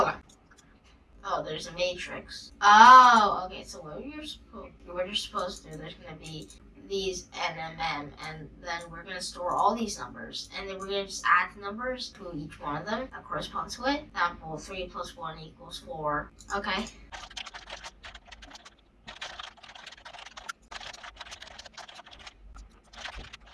Oh, there's a matrix. Oh, okay, so what you're supposed to do, there's going to be these NMM, and then we're going to store all these numbers, and then we're going to just add the numbers to each one of them that corresponds to it. Example, 3 plus 1 equals 4. Okay.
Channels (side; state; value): both; identical; correlation 1.00